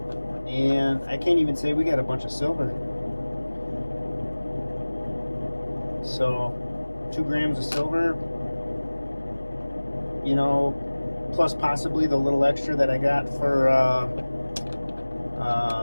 and I can't even say we got a bunch of silver. So 2 grams of silver, you know, plus possibly the little extra that I got for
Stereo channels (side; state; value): both; inverted; correlation -1.00